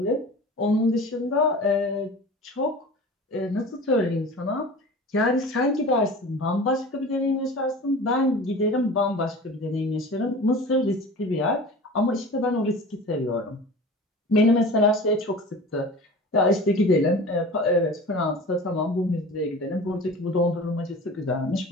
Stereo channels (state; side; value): normal; both; correlation 0.37